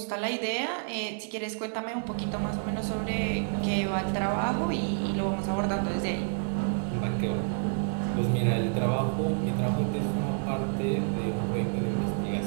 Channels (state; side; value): silent; left; digital silence